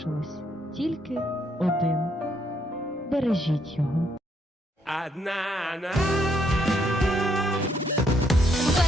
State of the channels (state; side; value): normal; both; correlation 0.73